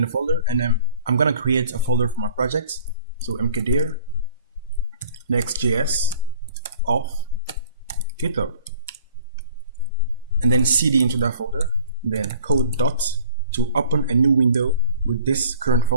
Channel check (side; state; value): both; inverted; correlation -0.50